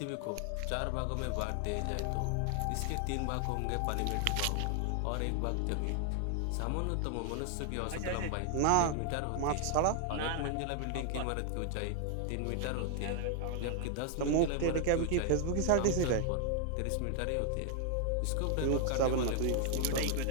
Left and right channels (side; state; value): both; different; correlation 0.00